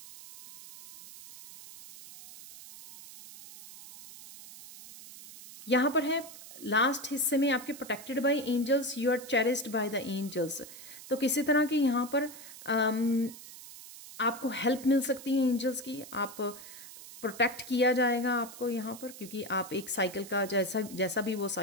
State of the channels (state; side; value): noise; right; hiss, 16 dB below the sound